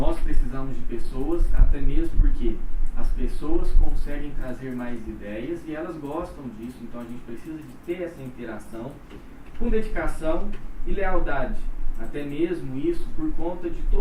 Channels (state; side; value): identical; both; correlation 1.00